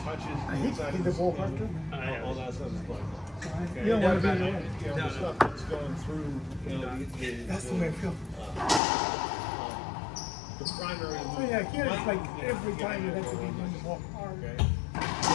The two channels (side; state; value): right; drops out; at 8.8 s